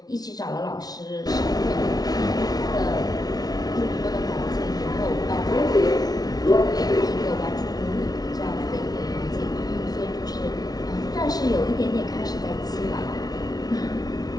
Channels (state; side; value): late; right; 0.19 ms